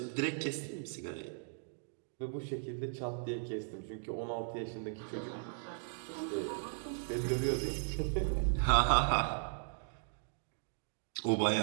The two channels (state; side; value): silent; left; digital silence